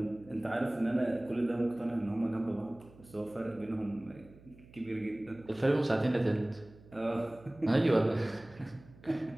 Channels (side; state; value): right; noise; hum, 23 dB below the sound